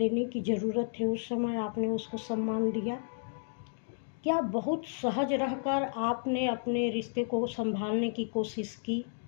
की ज़रूरत है, उस समय आपने उसको सम्मान दिया? क्या बहुत सहज रहकर आपने अपने रिश्ते को संभालने की कोशिश की?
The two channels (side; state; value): right; silent; digital silence